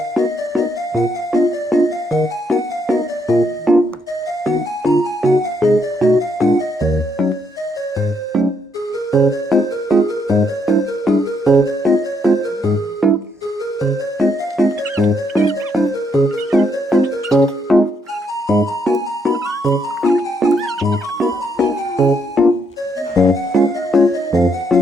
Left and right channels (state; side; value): normal; both; correlation 0.74